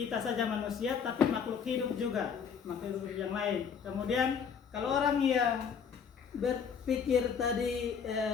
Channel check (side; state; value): right; quieter; 6.8 dB